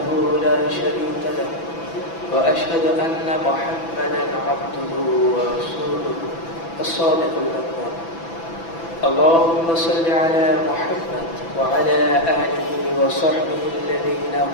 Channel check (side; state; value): right; late; 6.0 ms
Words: لا شريك له وأشهد أن محمدا عبده ورسوله الصادق الأمين اللهم صل على محمد وعلى آله وصحبه الذين